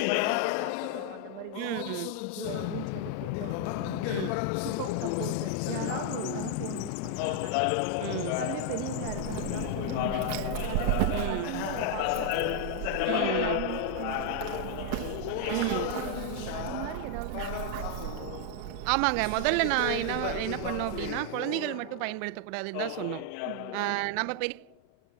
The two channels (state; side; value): different; both; correlation 0.00